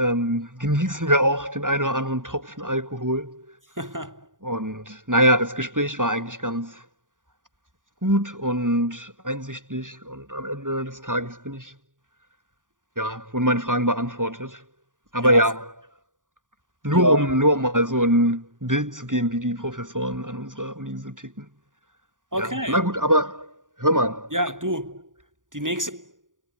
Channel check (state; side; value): late; left; 0.88 ms